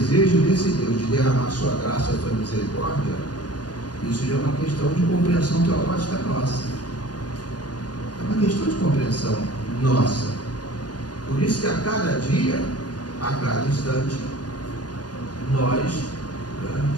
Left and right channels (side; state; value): right; late; 0.69 ms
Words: desse Deus de derramar sua graça e sua misericórdia, isso já é uma questão de compreensão teológica nossa. É uma questão de compreensão nossa. Por isso que a cada dia, a cada instante, nós,